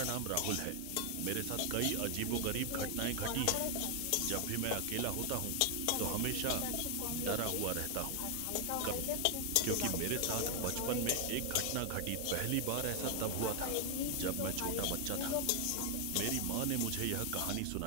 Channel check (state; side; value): different; both; correlation 0.00